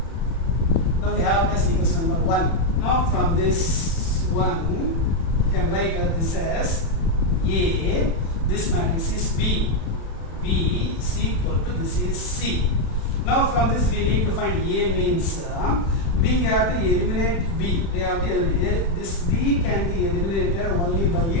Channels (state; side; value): late; right; 36 ms